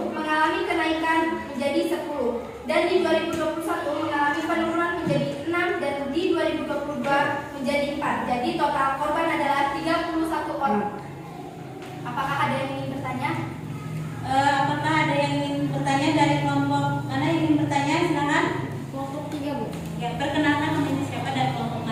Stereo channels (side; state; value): both; identical; correlation 1.00